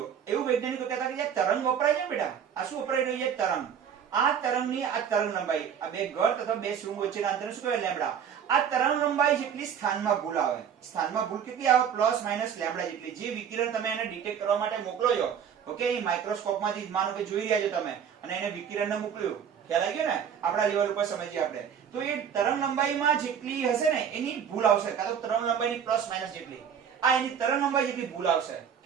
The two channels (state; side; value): quieter; left; 8.1 dB